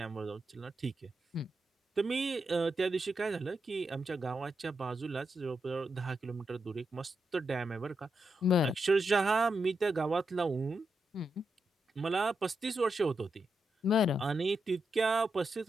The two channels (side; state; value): both; normal; correlation 0.85